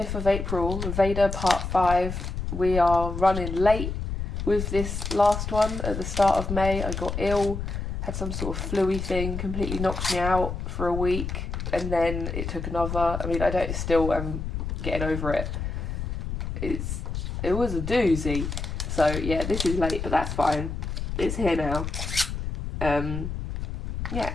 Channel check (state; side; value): noise; left; rumble, 4 dB below the sound